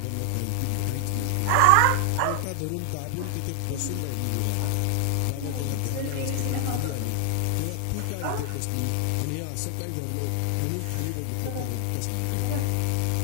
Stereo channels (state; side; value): different; both; correlation 0.00